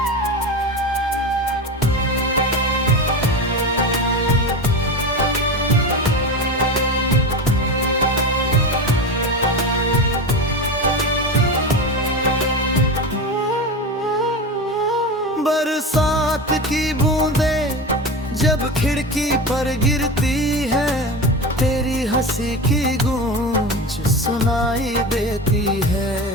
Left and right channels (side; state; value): both; normal; correlation 0.24